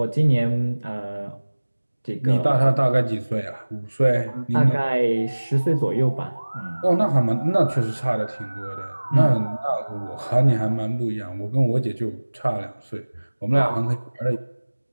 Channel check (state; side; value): inverted; both; correlation -1.00